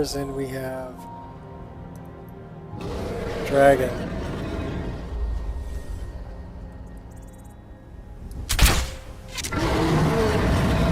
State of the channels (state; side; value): identical; both; correlation 1.00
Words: and we have dragon.